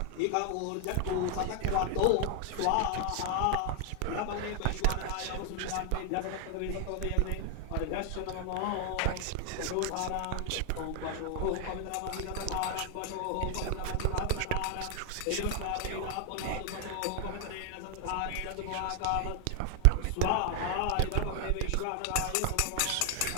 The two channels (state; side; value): different; both; correlation 0.00